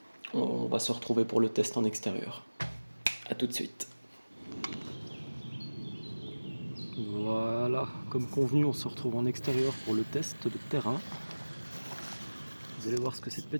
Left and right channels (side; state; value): both; inverted; correlation -1.00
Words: On va se retrouver pour le test en extérieur. A tout de suite. Voilà, comme convenu, on se retrouve en extérieur pour le test de terrain. Vous allez voir ce que cette